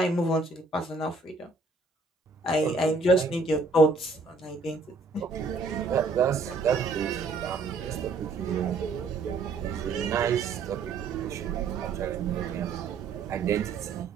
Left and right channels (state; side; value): quieter; left; 3.8 dB